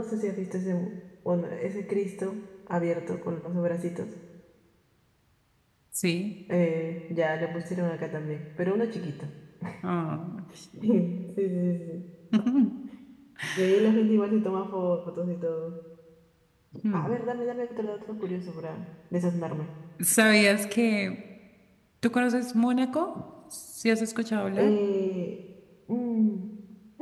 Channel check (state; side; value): identical; both; correlation 1.00